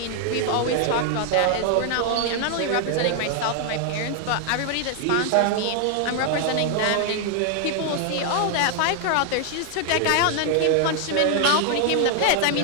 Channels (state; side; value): different; both; correlation 0.00